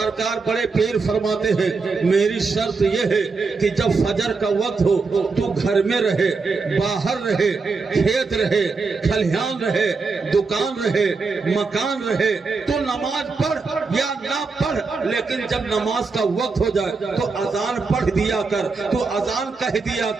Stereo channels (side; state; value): left; quieter; 4.4 dB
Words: بڑے پیر فرماتے ہیں میری شرط یہ ہے کہ جب فجر کا وقت ہو تو گھر میں رہے، باہر رہے، کھیت رہے، کھلیان رہے، دکان رہے، مکان رہے، تو نماز پڑھ یا نہ پڑھ لیکن جب نماز کا وقت ہو جائے تو اذان پڑھ دیا کر، تو اذان کہہ دیا